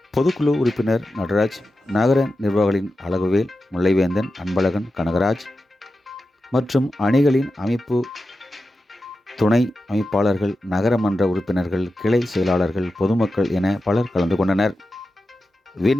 பொதுக்குழு உறுப்பினர் நடராஜ், நகர நிர்வாகிகளின் அழகுவேல், முல்லைவேந்தன், அன்பழகன், கனகராஜ் மற்றும் அணிகளின் அமைப்பு துணை அமைப்பாளர்கள், நகரமன்ற உறுப்பினர்கள், கிளை செயலாளர்கள், பொதுமக்கள் என பலர் கலந்து கொண்டனர்.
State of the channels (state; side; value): normal; both; correlation 0.91